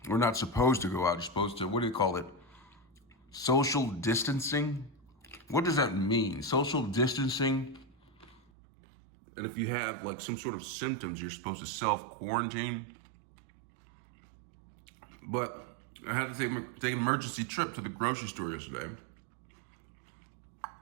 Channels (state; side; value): drops out; left; at 8.4 s